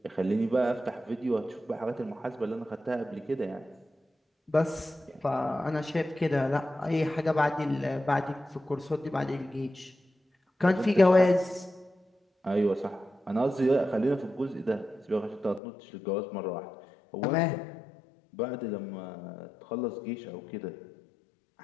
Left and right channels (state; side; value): drops out; right; at 15.6 s